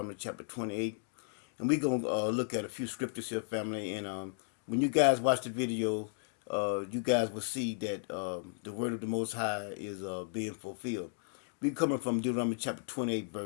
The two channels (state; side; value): silent; right; digital silence